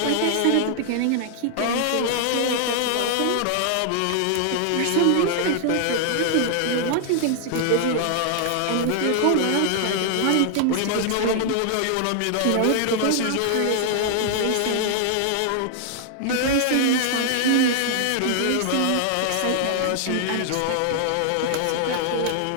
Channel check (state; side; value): different; both; correlation 0.00